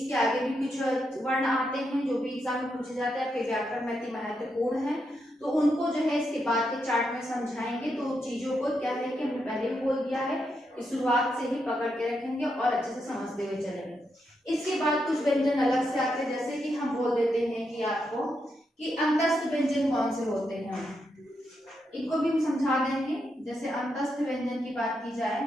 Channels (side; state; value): both; normal; correlation 0.82